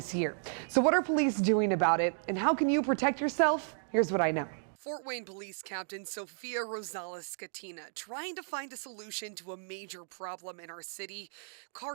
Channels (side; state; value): left; silent; digital silence